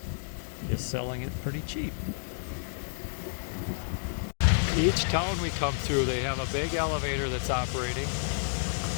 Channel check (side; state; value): right; silent; digital silence